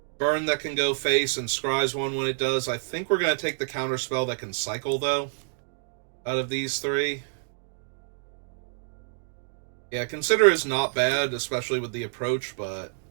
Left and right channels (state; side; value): silent; left; digital silence